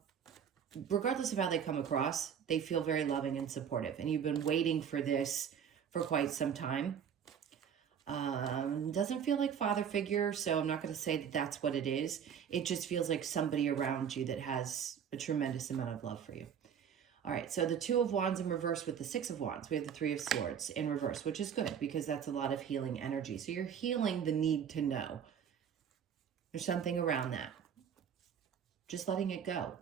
regardless of how they come across, they feel very loving and supportive, and you've been waiting for this for quite some time. Doesn't feel like father figure, so I'm not going to say that that's what it is. It just feels like somebody around you that has a tremendous amount of love for you. All right, so the Two of Wands in reverse with the Six of Wands. We have the Three of Swords in reverse, which is good because that's a lot of healing energy. So you're healing the need to know. There's something around that. Just letting it go.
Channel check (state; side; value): quieter; left; 8.0 dB